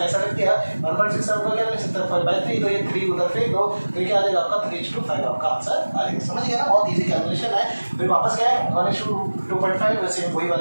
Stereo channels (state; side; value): inverted; both; correlation -1.00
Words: लिख दिया। 1.67 को क्या लिख सकते हैं? 5/3। तो ये 3 उधर फेंक दो तो क्या आ जाएगा आपका? 3:5 आपका आंसर आ जाएगा। समझ गया ना? बहुत इजी कैलकुलेशन है। फिर वापस क्या है? 1:2.5 वैसे वही